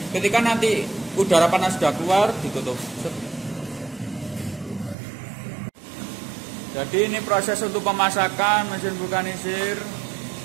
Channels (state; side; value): drops out; left; at 5.0 s